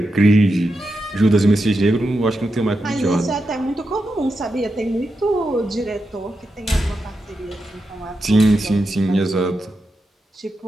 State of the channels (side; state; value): both; normal; correlation 0.87